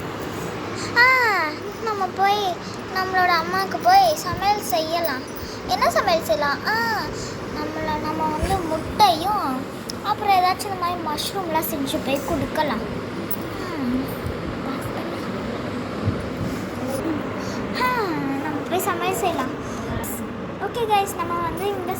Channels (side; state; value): both; identical; correlation 1.00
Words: நம்ம போய் நம்மளோட அம்மாவுக்கு போய் சமையல் செய்யலாம். என்ன சமையல் செய்யலாம்? நம்ம வந்து முட்டையும் அப்புறம் ஏதாச்சும் இந்த மாதிரி மஷ்ரூம்லாம் செஞ்சு போய் கொடுக்கலாம். நம்ம போய் சமையல் செய்யலாம். ஓகே கைஸ், நம்ம வந்து இந்த